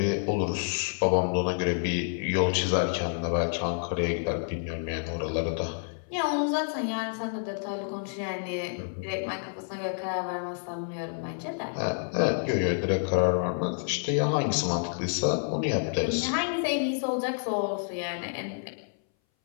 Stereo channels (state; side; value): silent; right; 59 dB below the other